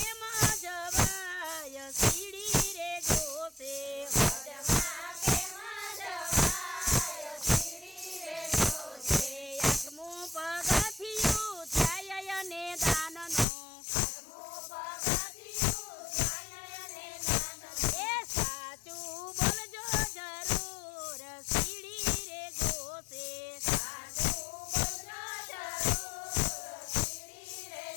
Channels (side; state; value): right; drops out; at 13.5 s